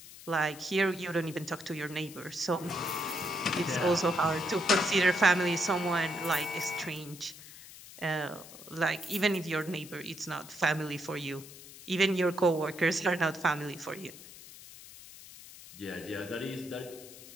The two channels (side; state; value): left; noise; hiss, 17 dB below the sound